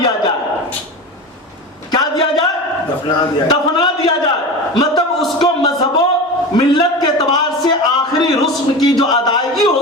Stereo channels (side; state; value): both; normal; correlation 0.28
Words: जाए। क्या दिया जाए? दफना दिया जाए। मतलब उसको मजहबो मिल्लत के एतबार से आखिरी रुस्म की जो अदायगी